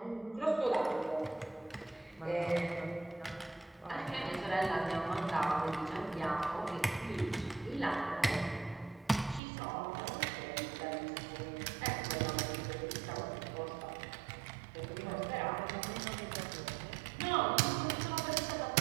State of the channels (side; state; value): left; drops out; at 9.4 s